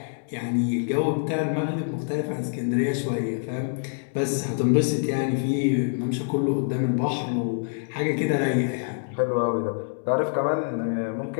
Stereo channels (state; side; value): silent; right; digital silence